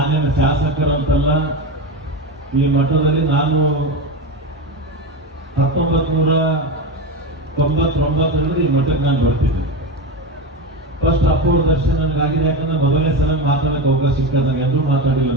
ಶಾಸಕರಂತಲ್ಲ, ಈ ಮಠದಲ್ಲಿ ನಾನು 1999 ಈ ಮಠಕ್ಕೆ ನಾನು ಬರ್ತಿದ್ದೆ. ಫಸ್ಟ್ ಅಪ್ಪವ್ರ ದರ್ಶನ ನನಗಾಗಿದೆ. ಯಾಕಂದ್ರೆ ಮೊದಲನೇ ಸಲ ಮಾತಾಡಕ್ಕೆ ಅವಕಾಶ ಸಿಕ್ಕಿದಾಗ ಎಂದೂ ಮಾತಾಡಿಲ್ಲ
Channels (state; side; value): normal; both; correlation 0.18